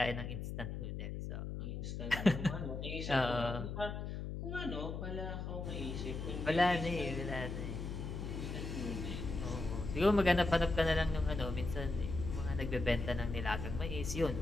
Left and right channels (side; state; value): left; noise; hum, 5 dB below the sound